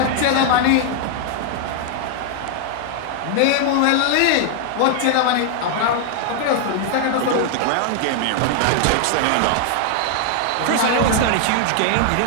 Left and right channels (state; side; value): different; both; correlation 0.00